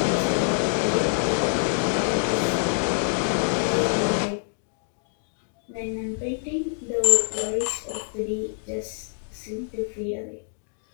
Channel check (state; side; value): silent; right; digital silence